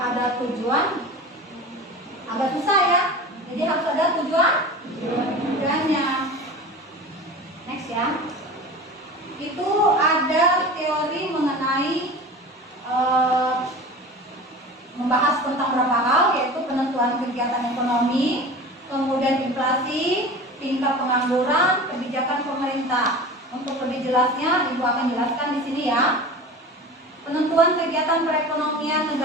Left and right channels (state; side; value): normal; both; correlation 0.35